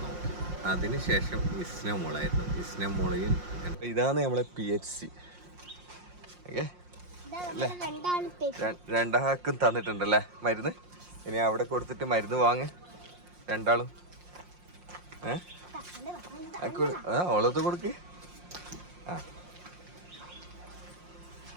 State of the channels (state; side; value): late; left; 5.6 ms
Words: നോക്കി. അതിനുശേഷം ഇസ്ന മോളായിരുന്നു. ഇസ്ന മോളയും ഇതാണ് നമ്മളെ PHC. ഓക്കെ അല്ലേ? രണ്ടാൾക്കും തന്നിട്ടുണ്ടല്ലേ മരുന്ന്. ഇനി അവിടെ കൊടുത്തിട്ട് മരുന്ന് വാങ്ങ് രണ്ടാളും. ഓളത്ത് കൊടുക്ക്. ആ,